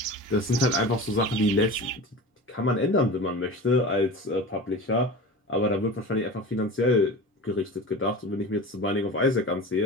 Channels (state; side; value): normal; both; correlation 0.33